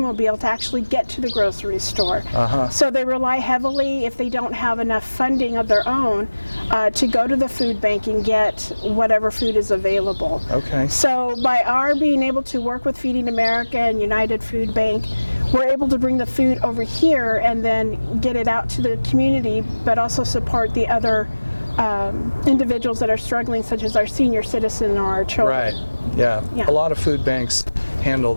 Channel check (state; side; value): inverted; both; correlation -1.00